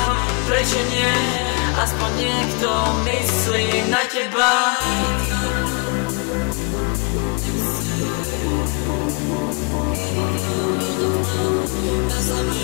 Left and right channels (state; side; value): quieter; right; 33.6 dB